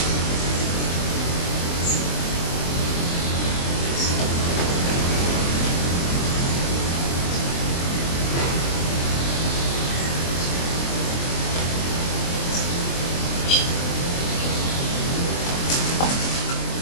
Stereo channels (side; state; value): right; late; 23 ms